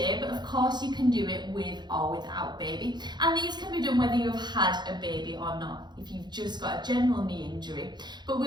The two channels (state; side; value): late; left; 0.21 ms